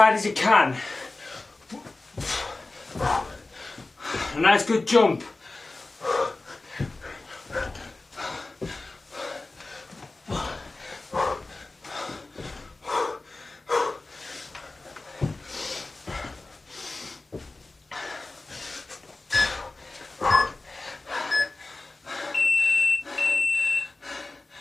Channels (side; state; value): right; quieter; 3.2 dB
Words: as you can. A nice good jump.